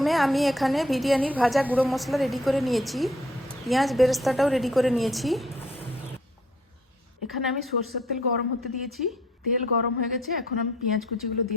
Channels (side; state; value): both; normal; correlation 0.62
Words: আমি এখানে বিরিয়ানির ভাজা গুঁড়ো মশলা রেডি করে নিয়েছি, পেঁয়াজ বেরেস্তাটাও রেডি করে নিয়েছি। এখানে আমি সরষের তেল গরম হতে দিয়েছি, তেল গরম হয়ে গেছে। এখন আমি পেঁয়াজ কুচিগুলো